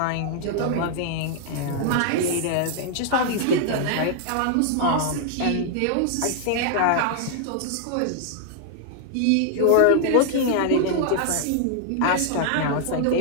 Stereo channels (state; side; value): different; both; correlation 0.00